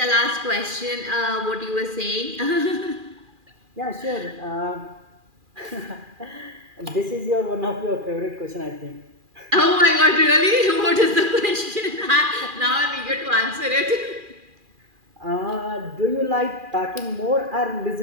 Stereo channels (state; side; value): late; left; 2.4 ms